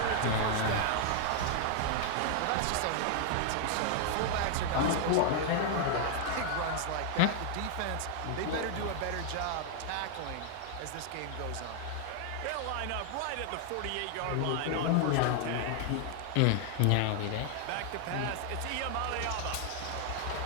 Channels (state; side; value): different; both; correlation 0.00